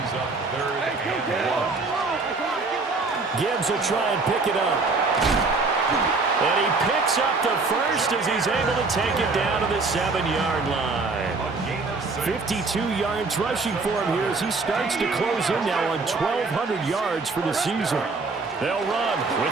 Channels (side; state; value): left; quieter; 3.9 dB